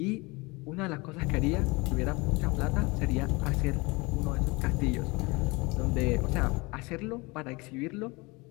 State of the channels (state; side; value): quieter; right; 25.2 dB